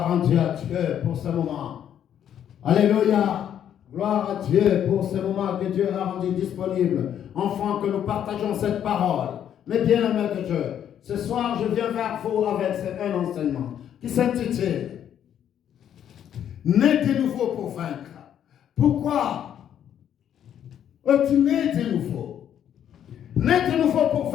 à Dieu pour ce moment. Alléluia. Gloire à Dieu pour ce moment que Dieu a rendu disponible. Enfants, que nous partageons cette parole. Mais bien aimés de Dieu, ce soir, je viens vers vous avec un enseignement qui s'intitule Né de nouveau pour vaincre. Pourquoi es-tu né de nouveau? Né de nouveau pour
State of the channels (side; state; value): right; quieter; 9.7 dB